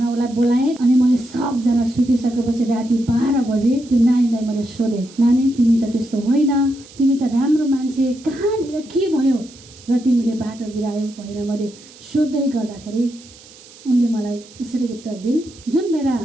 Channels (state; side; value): noise; right; hiss, 22 dB below the sound